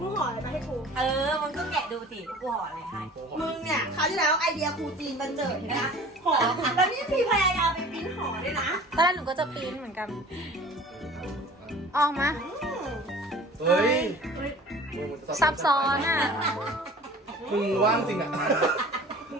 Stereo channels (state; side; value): normal; both; correlation 0.45